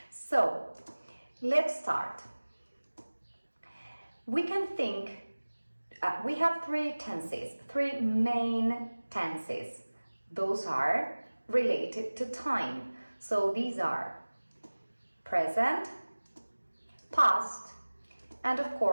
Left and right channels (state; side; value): inverted; both; correlation -1.00